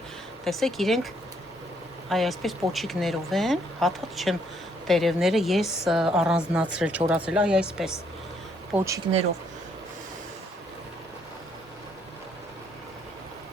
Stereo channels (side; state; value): both; normal; correlation 0.70